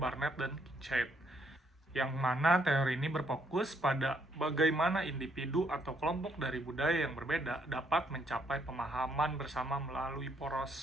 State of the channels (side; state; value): both; normal; correlation 0.71